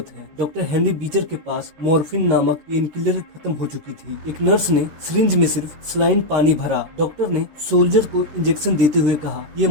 है। डॉक्टर हेनरी बीचर के पास मॉर्फिन नामक पेन किलर खत्म हो चुकी थी। एक नर्स ने सिरिंज में सिर्फ सलाइन पानी भरा। डॉक्टर ने सोल्जर को इंजेक्शन देते हुए कहा, ये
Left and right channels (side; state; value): left; late; 13 ms